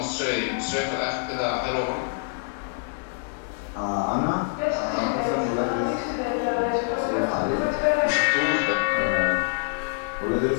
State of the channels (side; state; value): right; silent; digital silence